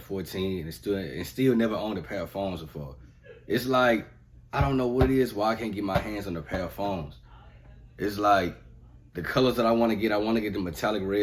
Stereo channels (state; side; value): identical; both; correlation 1.00